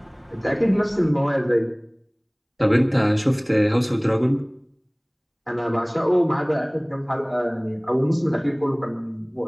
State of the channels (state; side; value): identical; both; correlation 1.00